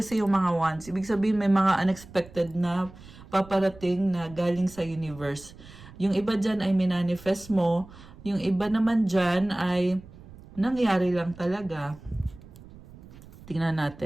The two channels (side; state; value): right; noise; rumble, 19 dB below the sound